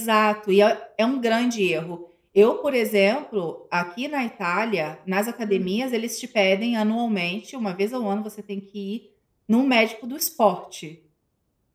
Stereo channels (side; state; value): both; identical; correlation 1.00